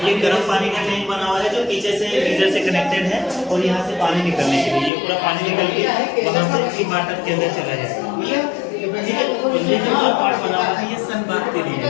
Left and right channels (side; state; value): right; drops out; at 4.9 s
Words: ये गर्म पानी का टैंक बना हुआ है जो पीछे से गीजर से कनेक्टेड है और यहाँ से पानी निकलने के लिए ये पूरा पानी निकल के वहाँ से वाटर के अंदर चला जाएगा, ठीक है। और ये जो पार्ट बना हुआ है ये सन बात के लिए है।